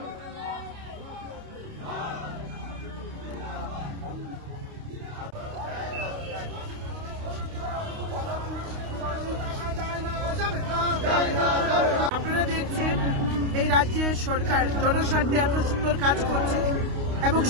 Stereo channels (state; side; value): late; left; 29 ms